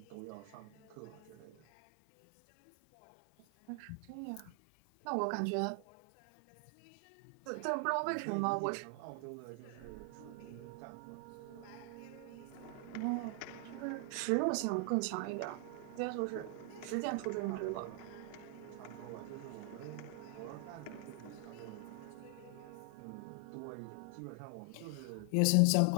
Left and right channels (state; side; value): different; both; correlation 0.00